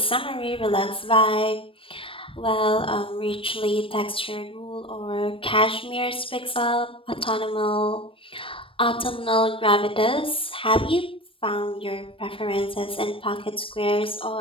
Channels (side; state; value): right; late; 0.26 ms